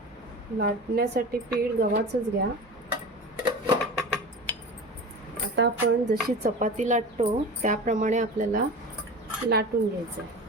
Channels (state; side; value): normal; both; correlation 0.32